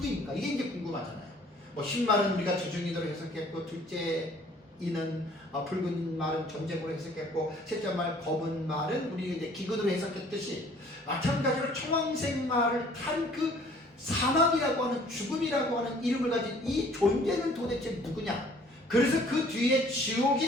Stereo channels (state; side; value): normal; both; correlation 0.55